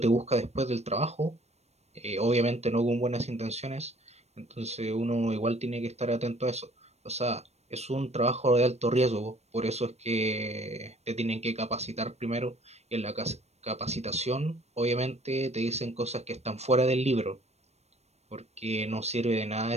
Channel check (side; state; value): left; late; 0.31 ms